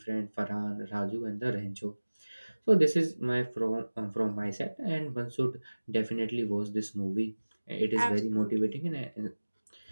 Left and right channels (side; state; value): both; inverted; correlation -1.00